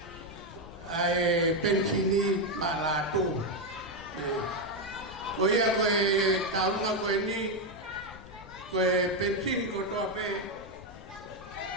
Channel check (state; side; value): noise; left; rumble, 18 dB below the sound